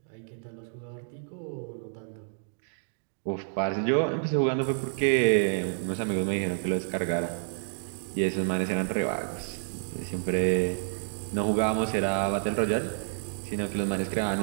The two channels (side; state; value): left; silent; digital silence